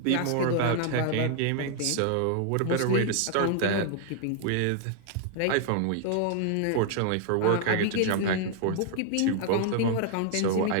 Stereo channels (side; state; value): both; different; correlation 0.00